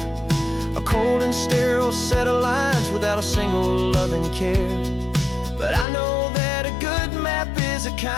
a cold and sterile set of lines without a single loving care. But I know that a good map is a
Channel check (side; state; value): right; drops out; at 5.9 s